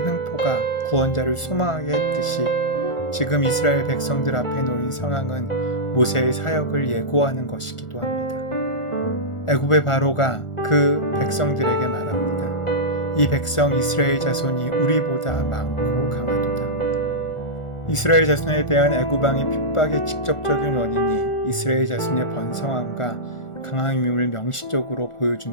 횡포가 구원자를 소망하게 했듯이 지금 이스라엘 백성들 앞에 놓인 상황은 모세의 사역을 예고하는 것이기도 합니다. 애굽의 바로가 그 백성들에게 말합니다. 이 백성 이스라엘 자손이 우리보다 많고 강하도다. 이스라엘 자손에 대한 애굽 왕의 핍박의 직접적인 원인이 이스라엘 자손의 번성함과 강함임을 명시적으로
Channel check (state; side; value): late; right; 1.4 ms